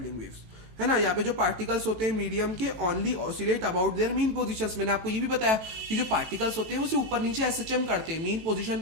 वेव्स, है ना। यहाँ पे जो पार्टिकल्स होते हैं मीडियम के only oscillate about their mean positions. मैंने आपको ये भी बताया कि जो पार्टिकल्स होते हैं वो सिर्फ ऊपर नीचे एसएचएम करते हैं, मीन पोजीशन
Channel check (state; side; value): late; left; 19 ms